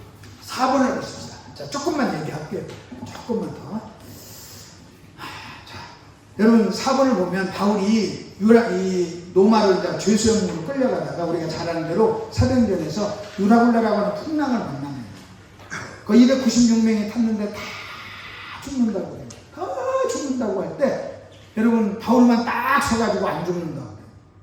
4번을 보십시다. 자, 조금만 얘기할게요. 조금만 더. 자, 여러분 4번을 보면 바울이 이 로마로 죄수형으로 끌려가다가 우리가 잘 아는 대로 사도행전에서 유라굴라라고 하는 풍랑을 만납니다. 그 296명이 탔는데 다 죽는다고 해요. 다 죽는다고 할 때 여러분 바울만 딱 서가지고 안 죽는다고 해요.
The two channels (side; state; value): both; identical; correlation 1.00